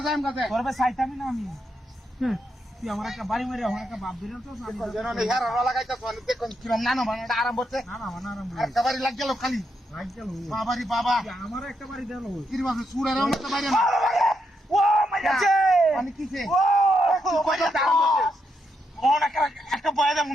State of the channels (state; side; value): normal; both; correlation 0.81